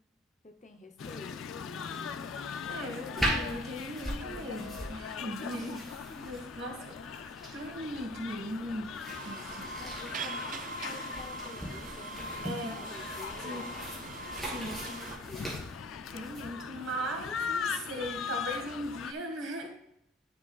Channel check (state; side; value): normal; both; correlation 0.46